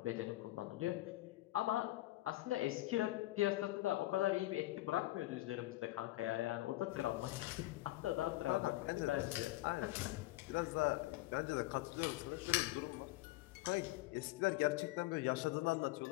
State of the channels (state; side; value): quieter; right; 18.0 dB